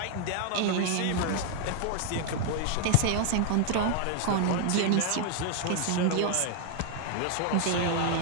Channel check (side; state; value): both; different; correlation 0.00